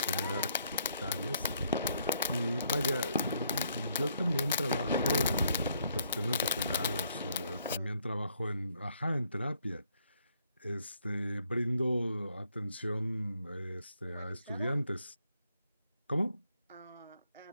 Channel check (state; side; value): inverted; both; correlation -0.71